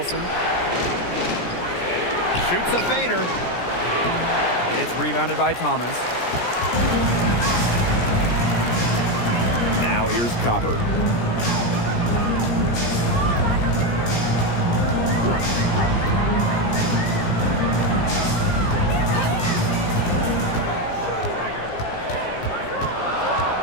Shoots a fader. It's rebounded by Thomas. Now here's Copper.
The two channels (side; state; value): right; late; 17 ms